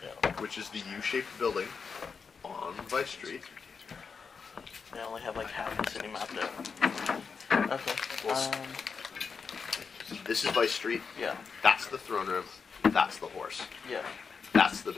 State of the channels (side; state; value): right; quieter; 5.5 dB